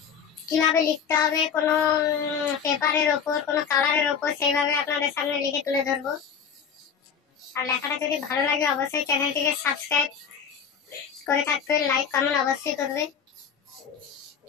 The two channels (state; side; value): quieter; right; 7.0 dB